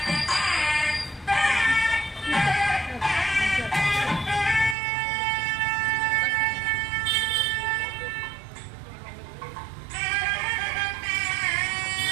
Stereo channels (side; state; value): left; drops out; at 4.8 s